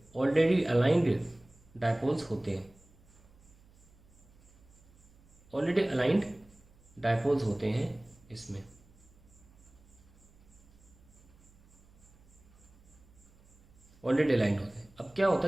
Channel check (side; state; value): right; noise; hum, 27 dB below the sound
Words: ऑलरेडी अलाइंड डायपोल्स होते हैं। ऑलरेडी अलाइंड डायपोल्स होते हैं इसमें। ऑलरेडी अलाइंड होते हैं। अब क्या होता